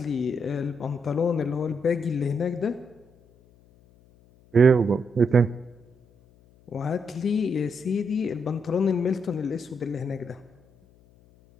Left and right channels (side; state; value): left; noise; hum, 29 dB below the sound